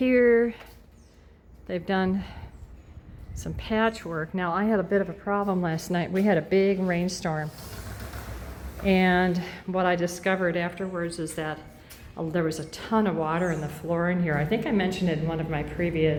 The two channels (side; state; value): both; identical; correlation 1.00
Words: they've done some patchwork. Now, I had a bit of a problem last night. We had a big rainstorm. And what I discovered afterwards is that there was a ton of water in the floor in here. I think I mentioned it in one of my